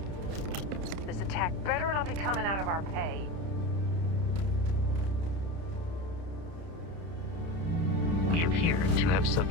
This attack better not be coming out of our pay. We appear to have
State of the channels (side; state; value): left; late; 30 ms